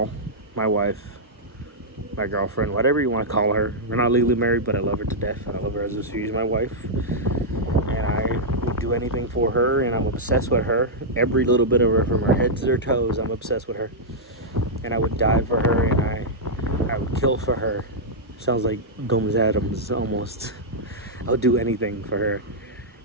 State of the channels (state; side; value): normal; both; correlation -0.07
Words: my wife, my girlfriend, whatever you want to call her. We're not legally married, but I love her to death. I love her as if she's my wife, and I would do anything for her, and I'm obsessed with her. Every little bit of her, from her head to her toes, I'm obsessed with her, and I would die for her, and I would kill for her. Sounds like Gomez Adams almost. I'll do anything for her.